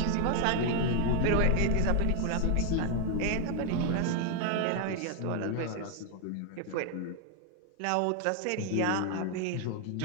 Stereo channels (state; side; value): different; both; correlation 0.01